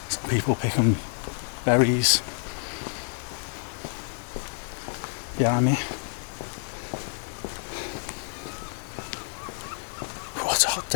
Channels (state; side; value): silent; right; 59 dB below the other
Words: some people picking berries behind me. Oh, it's a hot